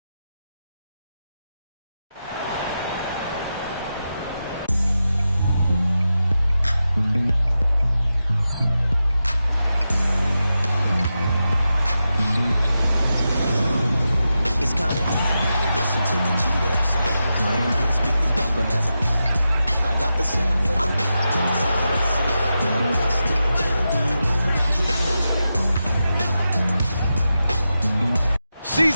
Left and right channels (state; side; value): inverted; both; correlation -0.90